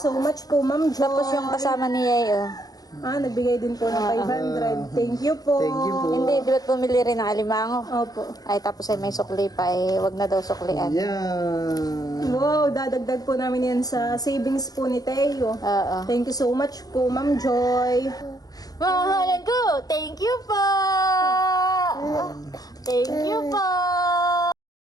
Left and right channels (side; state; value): right; late; 0.18 ms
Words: so much po, Ma'am Jo. Tapos yung kasama ni Yayo. Nagbigay din po ng 500. Thank you po. Hindi, di ba't pumili rin ng alimango? Opo. Ay, tapos ay may sukli pa wag na daw suklian. Wow, dadagdag po namin yan sa savings po ni Teo. Oo. Thank you so much po, Ma'am Joy. Mahalan ko, thank you po! Thank you po!